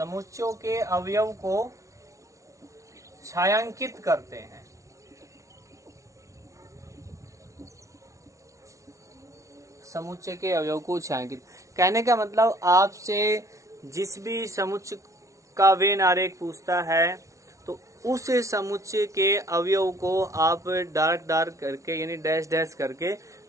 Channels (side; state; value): left; late; 0.15 ms